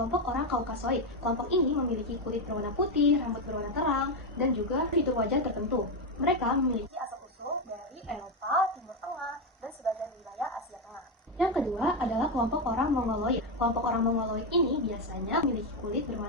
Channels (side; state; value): both; normal; correlation 0.08